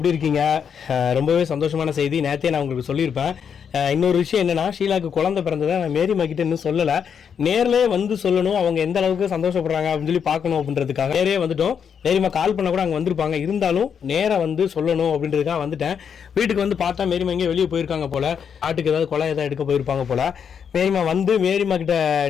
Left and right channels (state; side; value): quieter; right; 7.3 dB